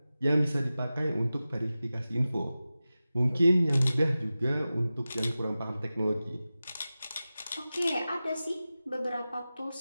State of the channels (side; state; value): both; inverted; correlation -0.95